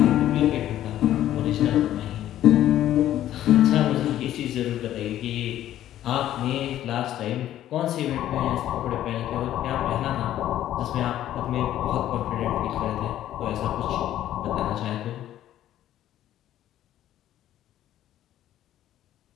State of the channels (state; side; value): quieter; right; 12.5 dB